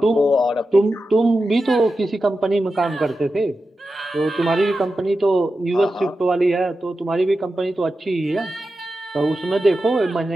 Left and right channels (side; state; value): both; normal; correlation 0.91